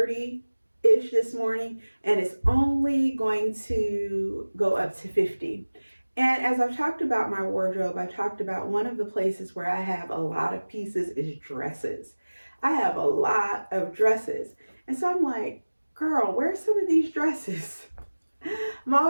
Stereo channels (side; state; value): both; inverted; correlation -1.00